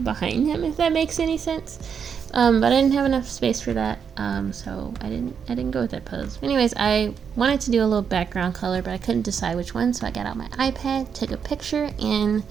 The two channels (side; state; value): left; quieter; 7.0 dB